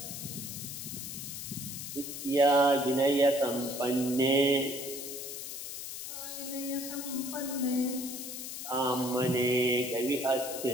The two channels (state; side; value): noise; left; hiss, 7 dB below the sound